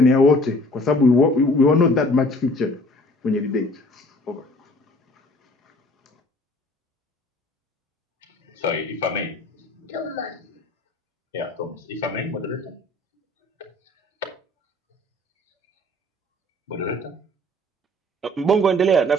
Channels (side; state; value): both; normal; correlation 0.53